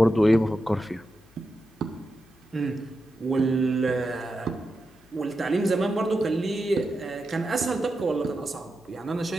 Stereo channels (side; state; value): left; noise; hum, 30 dB below the sound